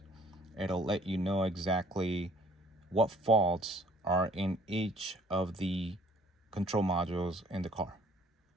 It'll let you know exactly what faults are in each of the control modules in the car.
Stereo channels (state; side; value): normal; both; correlation 0.57